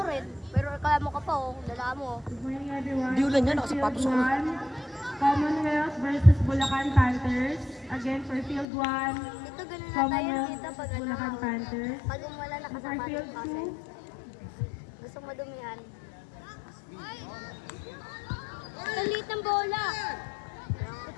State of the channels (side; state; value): right; drops out; at 8.7 s